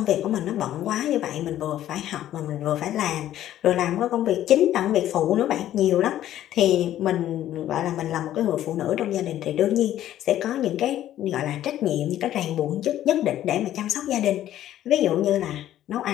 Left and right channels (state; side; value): quieter; right; 12.5 dB